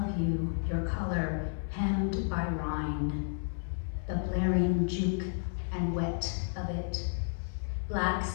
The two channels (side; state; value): right; silent; 56 dB below the other